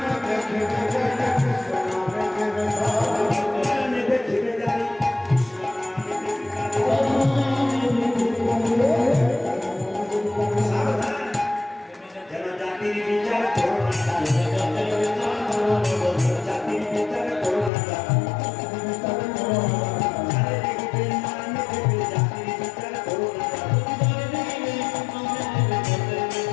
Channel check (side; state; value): right; drops out; at 17.7 s